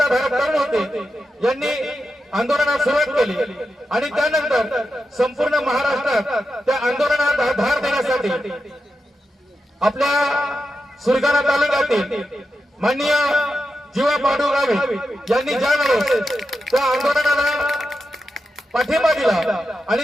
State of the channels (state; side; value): normal; both; correlation 0.88